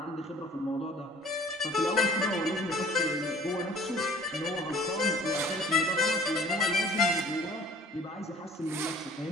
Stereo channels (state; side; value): normal; both; correlation 0.51